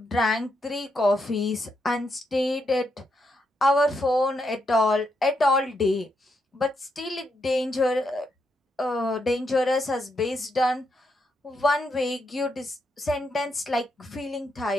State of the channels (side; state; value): both; normal; correlation 0.80